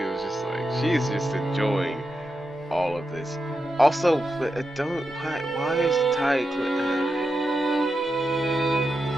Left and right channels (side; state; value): both; normal; correlation 0.88